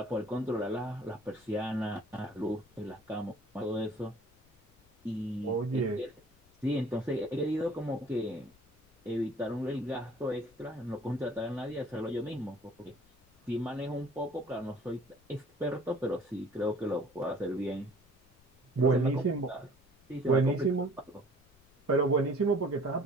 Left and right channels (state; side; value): noise; left; rumble, 30 dB below the sound